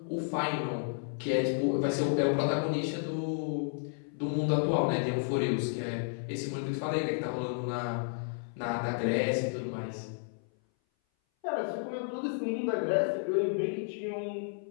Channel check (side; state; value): right; silent; 56 dB below the other